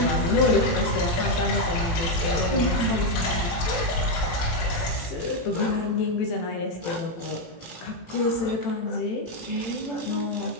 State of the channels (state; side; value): late; right; 18 ms